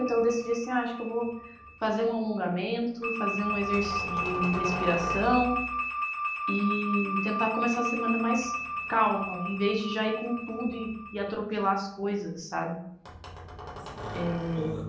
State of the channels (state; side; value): identical; both; correlation 1.00